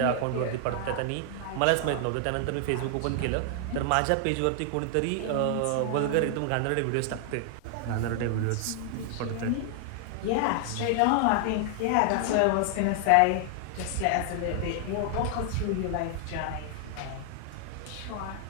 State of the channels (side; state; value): both; different; correlation 0.00